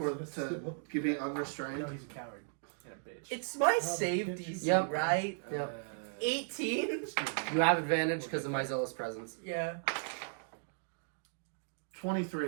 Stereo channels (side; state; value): left; silent; digital silence